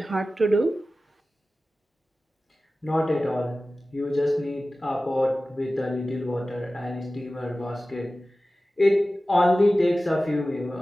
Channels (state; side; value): normal; both; correlation 0.96